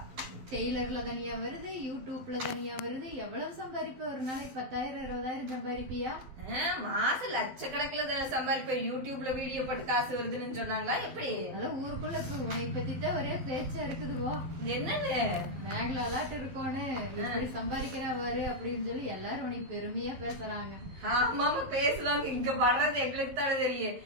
டெய்லர்ல தனியா வருது, யூடியூப்ல தனியா வருது. எவ்வளவு சம்பாதிப்ப? ஒரு நாளைக்கு 10,000 20,000 சம்பாதிப்பியா? மாசம் லட்சக்கணக்கில் சம்பாதிப்ப. யூடியூப்ல வீடியோ போட்டு காசு வருதுன்னு சொன்னாங்களா? எப்படி? அதான் ஊருக்குள்ள உன்னை பத்தி தான் ஒரே பேச்சா இருக்குதுவோ. என்னன்னு மேகலாட்டு இருக்கோன்னு இப்படி சம்பாதிக்கிறா பாரு அப்படின்னு சொல்லி எல்லாரும் உன்னை பெருமையா பேசுறாங்க. ஆமாமா பேசுவாங்க. இங்க வர்றது எங்களுக்கு தானே தெரியும்.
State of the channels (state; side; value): late; left; 12 ms